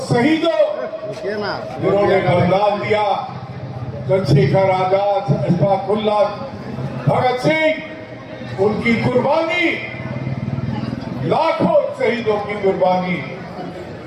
शहीदों जिन्होंने बलिदान दिया, चंद्रशेखर आजाद, अशफाकुल्लाह, भगत सिंह, उनकी कुर्बानी, लाखों शहीदों की कुर्बानी,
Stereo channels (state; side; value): identical; both; correlation 1.00